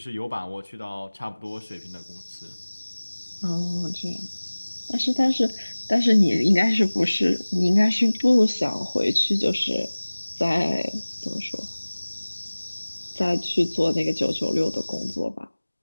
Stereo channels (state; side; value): inverted; both; correlation -1.00